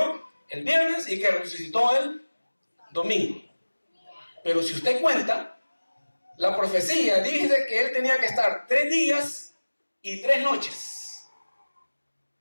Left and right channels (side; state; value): both; inverted; correlation -1.00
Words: el viernes y que resucitó el domingo. Pero si usted cuenta, la profecía dice que Él tenía que estar 3 días y 3 noches.